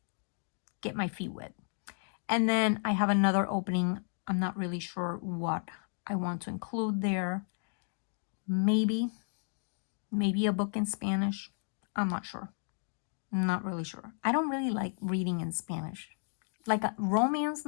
get my feet wet. And then I have another opening. I'm not really sure what I want to include there. Maybe a book in Spanish. I'm not sure. I'm not really sure. I don't really like reading in Spanish. Like romance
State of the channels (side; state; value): right; silent; 56 dB below the other